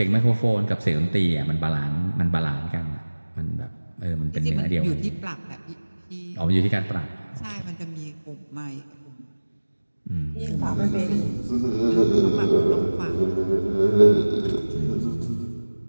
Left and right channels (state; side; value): inverted; both; correlation -1.00